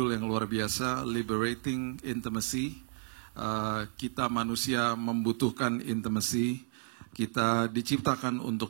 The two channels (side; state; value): left; silent; 56 dB below the other